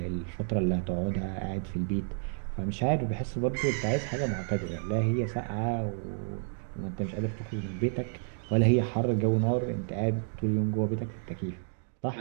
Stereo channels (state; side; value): silent; left; digital silence